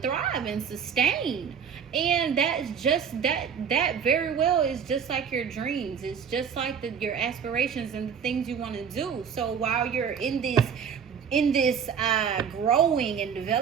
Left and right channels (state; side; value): quieter; left; 7.3 dB